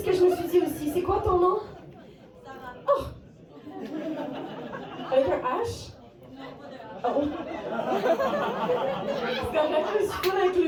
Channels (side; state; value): both; identical; correlation 1.00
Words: que je me suis dit aussi. C'est quoi ton nom? Oh! Avec un H? Oh! C'est correct, je suis pas